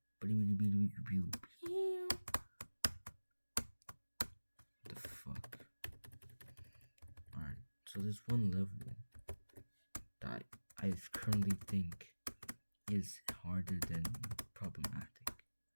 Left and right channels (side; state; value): both; inverted; correlation -1.00